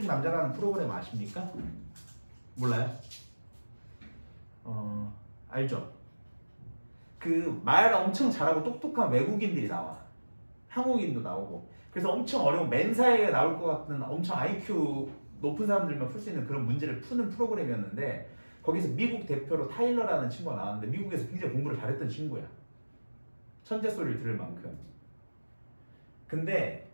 남자라는 프로그램 아십니까? 몰라요? 알죠? 그 말 엄청 잘하고 똑똑한 외국인들이 나와. 한국인도 나오고. 그래서 엄청 어려운 맨사에 나올 것 같은 엄청 IQ 높은 사람들만 풀 수 있는 그런 문제를 푸는 프로그램이었는데 거기서 미국 대표로 타일러라는 친구가 나왔는데 미국에서 굉장히 공부를 잘했던 친구야. 천재 소리를 들을 만큼. 근데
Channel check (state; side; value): inverted; both; correlation -1.00